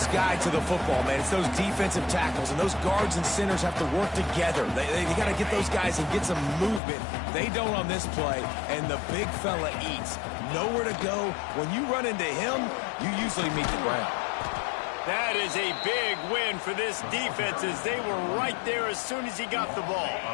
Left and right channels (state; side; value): drops out; right; at 6.8 s